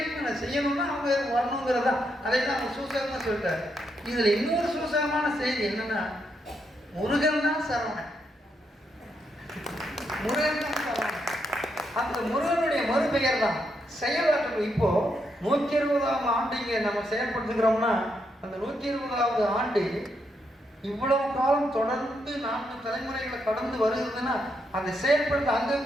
அவங்க வரணுங்கிறதா. அதை தான் அவங்க சூசகமாக சொல்லிட்டாரு. இதுல இன்னொரு சூசகமான செய்தி என்னன்னா, முருகன் தான் சரவணன். அந்த முருகனுடைய மறுபெயர் தான் செயலாற்று. இப்போ 120ஆம் ஆண்டு இங்கே நம்ம செயல்படுத்துகிறோம்னா, அந்த 120வது ஆண்டு இவ்வளவு காலம் தொடர்ந்து 4 தலைமுறைகளை கடந்து வருகிறதுன்னா, அதை செயல்படுத்த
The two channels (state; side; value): normal; both; correlation 0.80